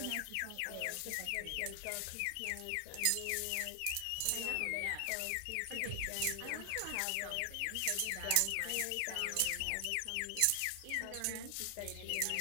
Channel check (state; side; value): different; both; correlation 0.00